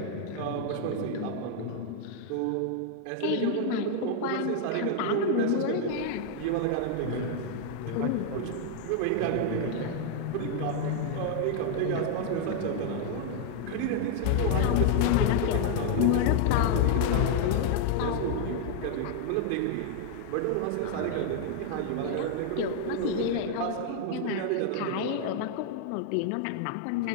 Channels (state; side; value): different; both; correlation 0.00